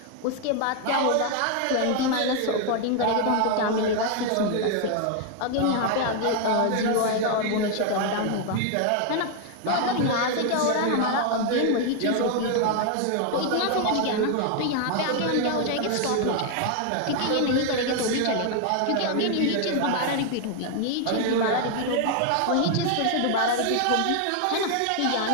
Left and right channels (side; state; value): both; different; correlation 0.00